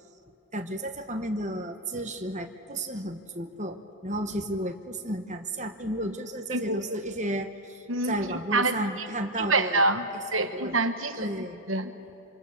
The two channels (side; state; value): both; normal; correlation 0.02